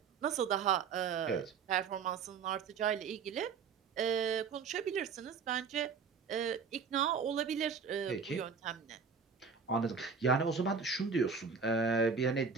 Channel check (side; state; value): left; quieter; 5.8 dB